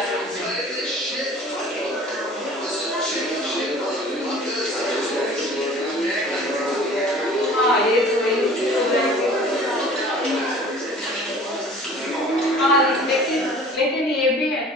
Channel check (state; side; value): normal; both; correlation 0.47